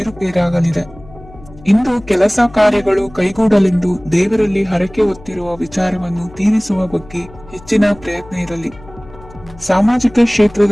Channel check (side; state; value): left; noise; hum, 21 dB below the sound